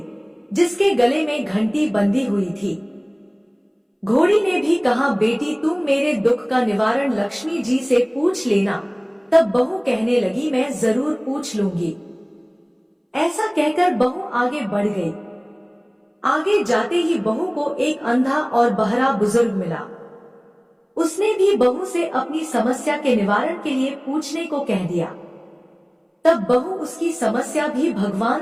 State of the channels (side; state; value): both; identical; correlation 1.00